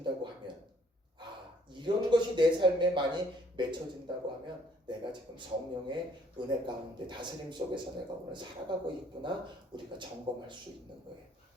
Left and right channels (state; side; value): normal; both; correlation 0.63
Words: 하면 이런 것이 내 삶에 많이 맺혀진다고 하면 내가 지금 성령의 은혜 가운데 다스림 속에서 내가 오늘 살아가고 있구나 우리가 점검할 수 있는 거예요.